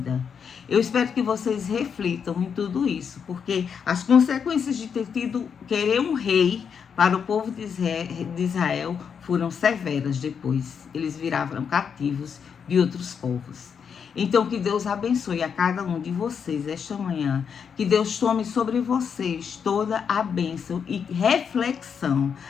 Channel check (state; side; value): quieter; right; 6.9 dB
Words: Eu espero que vocês reflitam em tudo isso, porque as consequências de querer um rei para o povo de Israel foram severas depois. Eles viraram cativos de outros povos. Então, que Deus abençoe a cada um de vocês esta manhã. Que Deus tome sobre vocês toda a bênção e reflexão